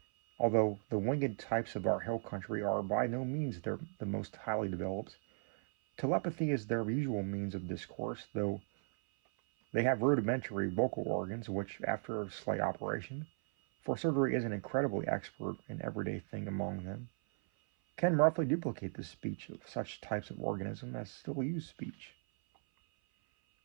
although the winged types of our hill country are by no means the most highly developed. Telepathy is their usual means of discourse, though they have rudimentary vocal organs which, after a slight operation, for surgery is an incredibly expert and everyday thing among them, can roughly duplicate the speech of such types of organism as still use speech.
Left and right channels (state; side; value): silent; left; 53 dB below the other